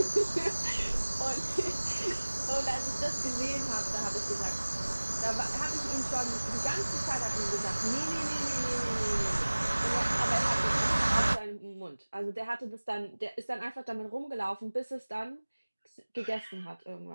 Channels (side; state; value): both; inverted; correlation -1.00